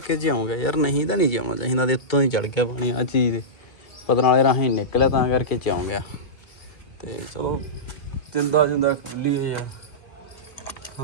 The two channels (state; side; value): late; right; 2.3 ms